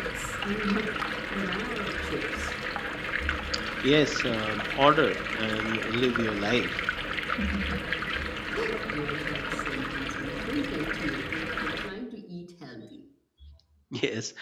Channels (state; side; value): identical; both; correlation 1.00